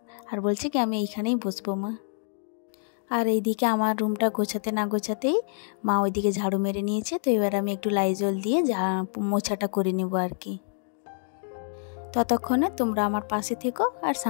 আর বলছে কি আমি এইখানেই বসবো মা। আর এইদিকে আমার রুমটা গোছাতে না গোছাতেই মা ওইদিকে ঝাড়ু মেরে নিয়েছে। তো এবার আমি একটু লাইজল দিয়ে মোছাটা করে নেবো আর কি। ততক্ষণে তোমরা আমার পাশে থেকো আর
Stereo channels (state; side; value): silent; right; digital silence